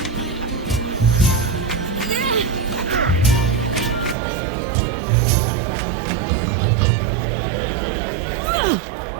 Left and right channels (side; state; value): left; drops out; at 4.2 s